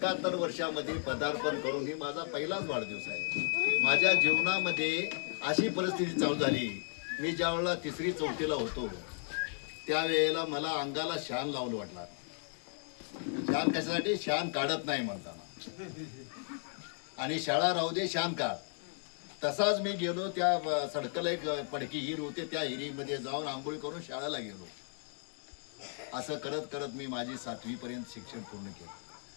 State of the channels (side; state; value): right; silent; 55 dB below the other